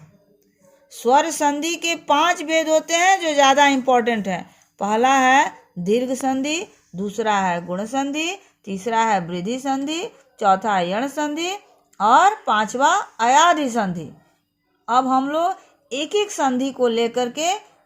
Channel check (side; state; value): both; identical; correlation 1.00